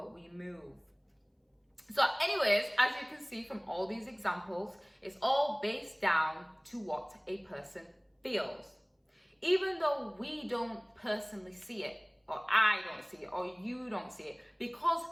we move. So anyways, as you can see from all these examples, it's all based down to what a person feels. Even though we don't personally see it, or I don't see it, or you don't see it, because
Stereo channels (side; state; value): both; identical; correlation 1.00